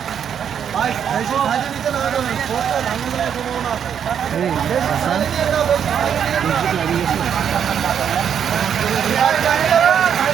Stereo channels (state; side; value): quieter; left; 8.3 dB